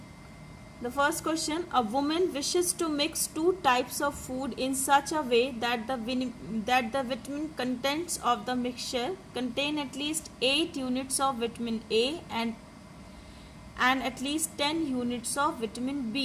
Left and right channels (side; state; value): both; identical; correlation 1.00